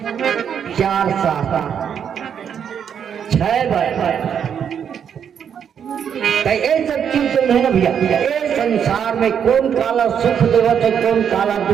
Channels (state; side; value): quieter; left; 8.0 dB